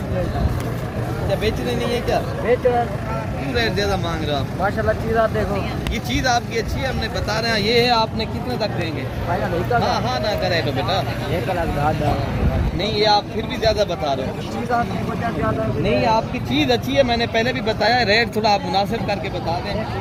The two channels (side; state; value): both; identical; correlation 1.00